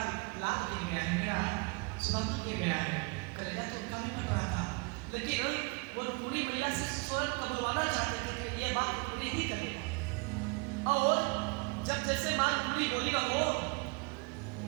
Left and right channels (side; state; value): left; quieter; 30.7 dB